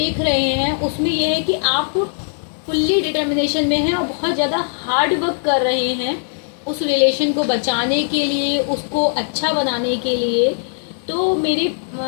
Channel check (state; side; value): silent; right; digital silence